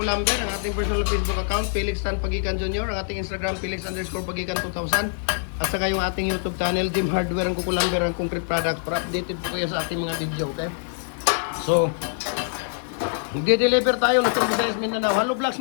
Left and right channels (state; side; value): silent; right; digital silence